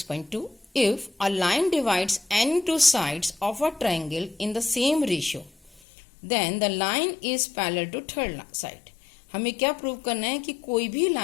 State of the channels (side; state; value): right; drops out; at 5.8 s